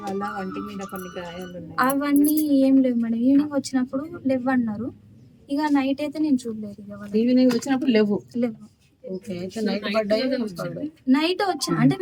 వాళ్ళ వంటి మీద కొన్ని గాయాలు అవన్నీ ఏం లేవు మేడం. ఈవినింగ్ వచ్చినప్పుడు లేవు అన్నారు. ఇక నైట్ అయితే నేను చూడలేదు. ఇక ఈవినింగ్ వచ్చినప్పుడు లేవు. ఓకే అయితే నైట్ పడ్డాయి నైట్ వచ్చా అంటే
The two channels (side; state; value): both; identical; correlation 1.00